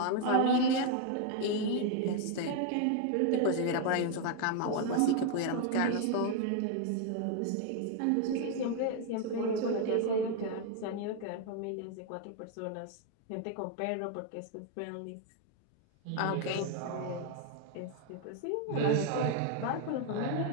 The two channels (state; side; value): different; both; correlation 0.01